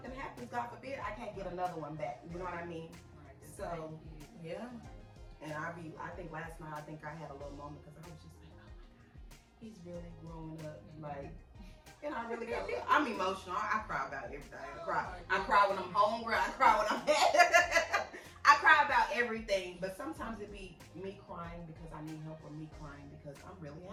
happens, God forbid, I can't get another one back. You know what I mean? Right. So yeah. And I think last night I had a little moment because I was just like, oh my God, he's really growing up. Like, and I really got, I'm emotional. I cry about everything. I cry when I'm hungry. I cry when I'm mad. I cry about everything, but sometimes it be me crying because I need help or me crying because I'm really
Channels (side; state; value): both; identical; correlation 1.00